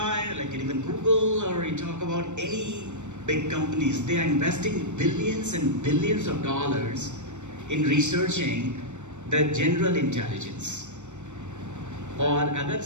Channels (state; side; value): late; left; 0.84 ms